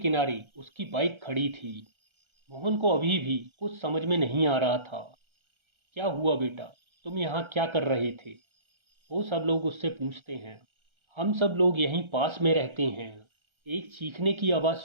उसकी बाइक खड़ी थी। मोहन को अभी भी कुछ समझ में नहीं आ रहा था। क्या हुआ बेटा, तुम यहाँ क्या कर रहे थे? वो सब लोग उससे पूछते हैं। हम सब लोग यहीं पास में रहते हैं। एक चीखने की आवाज़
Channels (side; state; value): left; late; 1.3 ms